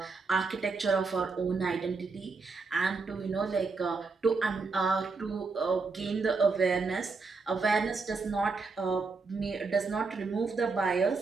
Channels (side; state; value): left; quieter; 4.3 dB